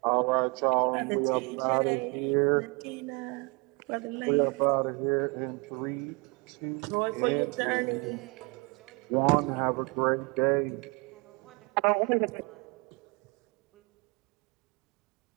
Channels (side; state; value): left; quieter; 30.3 dB